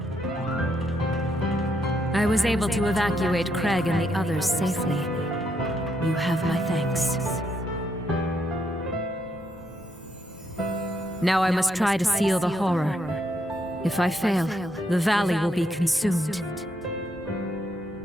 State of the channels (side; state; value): both; normal; correlation 0.77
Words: I was able to evacuate Craig and the others safely. You have my thanks. Now I must try to seal the horror. If I fail, the valley will be consumed.